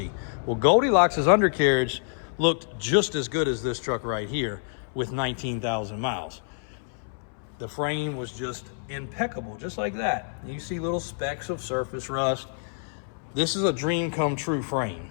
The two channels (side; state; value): right; silent; 60 dB below the other